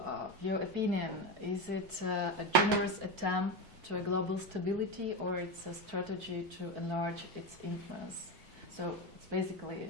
your opinion, is it a generous attempt to a global stability, or it's a strategy to enlarge its influence? So, it's basically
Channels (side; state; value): both; normal; correlation 0.16